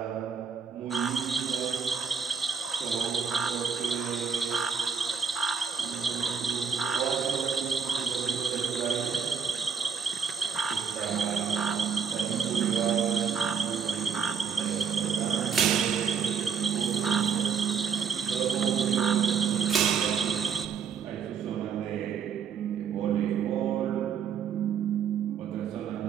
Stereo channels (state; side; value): quieter; left; 6.6 dB